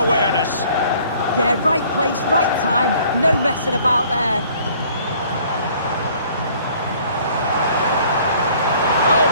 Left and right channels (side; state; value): both; inverted; correlation -0.56